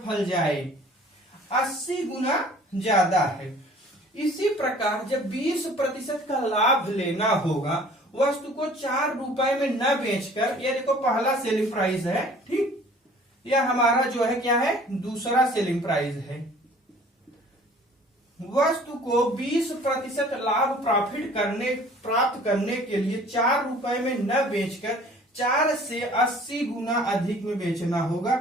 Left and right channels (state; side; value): normal; both; correlation 0.51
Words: फल जाए 80 गुना ज्यादा है। इसी प्रकार जब 20% का लाभ लेना होगा, वस्तु को 4 रुपए में न बेचकर, ये देखो पहला सेलिंग प्राइस है, ठीक, यह हमारा जो है क्या है, दूसरा सेलिंग प्राइस है। वस्तु को 20% लाभ प्राप्त करने के लिए 4 रुपए में न बेचकर 4 से 80 गुना अधिक में बेचना होगा,